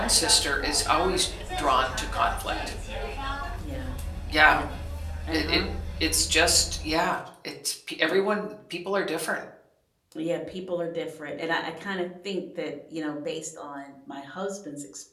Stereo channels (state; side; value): identical; both; correlation 1.00